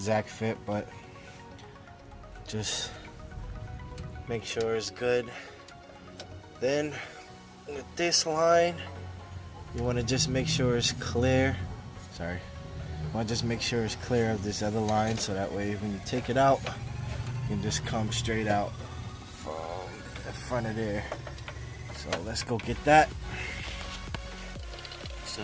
fit, but just make sure it's good. Then with this line, you want to just make sure it's clear. Sorry. You want to just make sure it's clear of this other line, so that way when you take it out, you can just come straight out from the front of there. So let's go get that.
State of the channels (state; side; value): identical; both; correlation 1.00